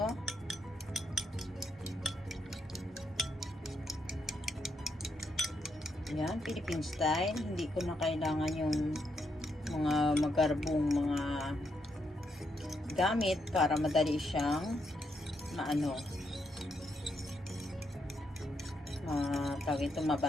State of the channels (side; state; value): both; normal; correlation 0.79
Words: Ayan, Philippine style. Hindi ko na kailangan yung mga magarbong mga gamit para madali siyang tawag ito,